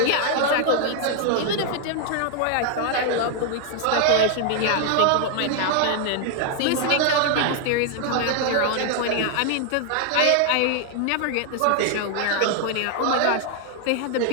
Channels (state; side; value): different; both; correlation 0.00